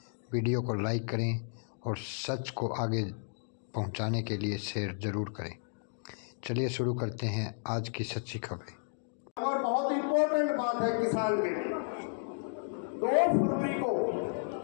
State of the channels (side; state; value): right; silent; digital silence